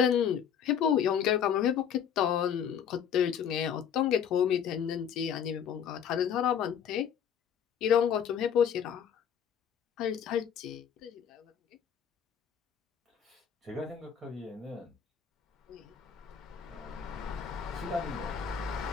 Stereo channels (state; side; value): quieter; right; 8.3 dB